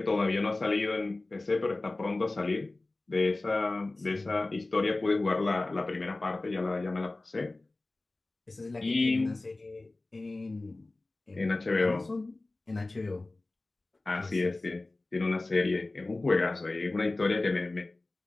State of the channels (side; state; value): right; quieter; 3.0 dB